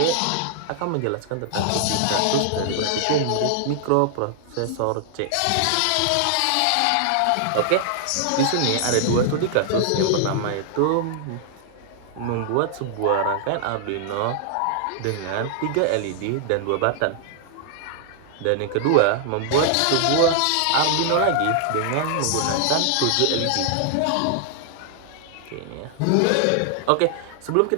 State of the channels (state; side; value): different; both; correlation 0.00